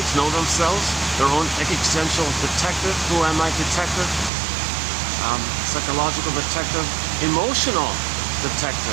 to know themselves, their own existential detective, who am I detective, psychological detective, emotional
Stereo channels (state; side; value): drops out; left; at 4.3 s